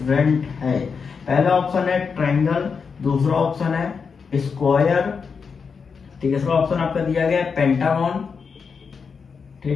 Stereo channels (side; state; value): right; quieter; 5.6 dB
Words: है। पहला ऑप्शन है ट्रायंगल, दूसरा ऑप्शन है स्क्वायर, तीसरा ऑप्शन आपका दिया गया है पेंटागन,